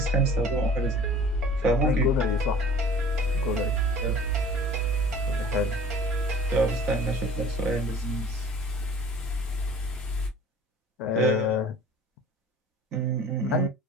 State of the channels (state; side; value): normal; both; correlation 0.46